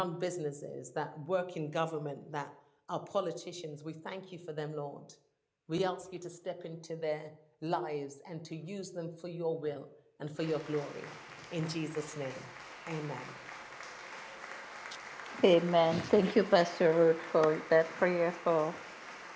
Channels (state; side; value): identical; both; correlation 1.00